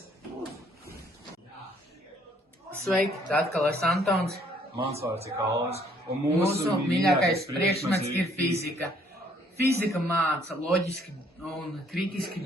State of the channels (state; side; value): normal; both; correlation 0.64